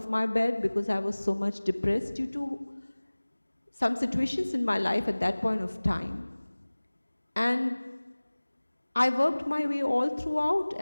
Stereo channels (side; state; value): both; inverted; correlation -1.00